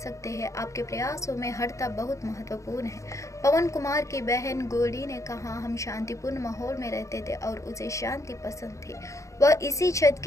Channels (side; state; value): right; late; 0.15 ms